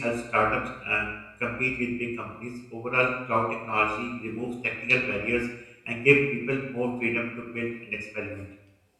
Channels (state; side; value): identical; both; correlation 1.00